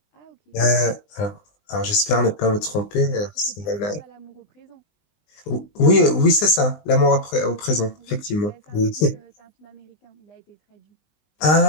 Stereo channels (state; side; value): late; right; 20 ms